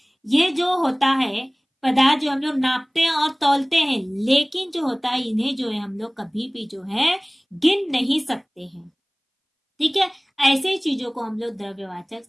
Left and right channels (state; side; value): identical; both; correlation 1.00